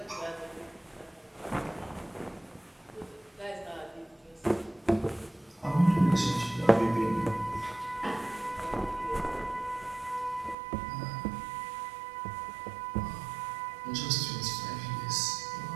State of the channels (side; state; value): left; drops out; at 10.6 s